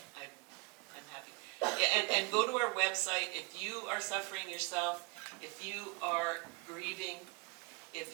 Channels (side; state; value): left; quieter; 29.3 dB